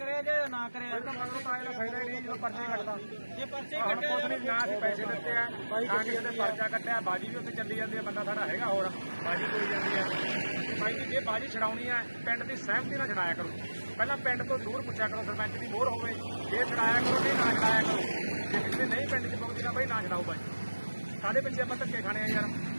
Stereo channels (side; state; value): both; inverted; correlation -1.00